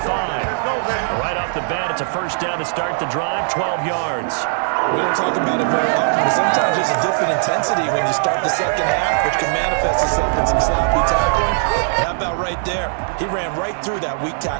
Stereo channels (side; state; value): left; silent; digital silence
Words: Right off the bat, it's a first down to start the drive, 12 yards. We don't talk about it very often, but sometimes there's a dip in intensity when you start the second half, which can manifest itself in some sloppy tackling. And how about right there? He ran right through that weak